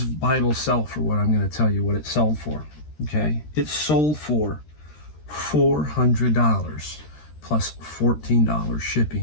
Bible sell for what I'm going to tell you what it sold for? Okay. It sold for $400 plus $14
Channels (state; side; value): late; right; 13 ms